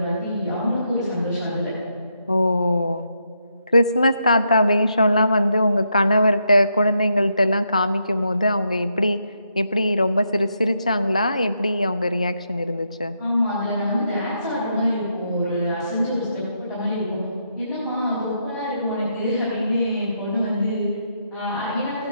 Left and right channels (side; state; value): both; inverted; correlation -0.80